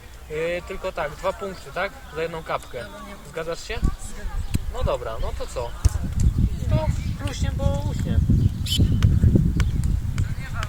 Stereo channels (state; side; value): identical; both; correlation 1.00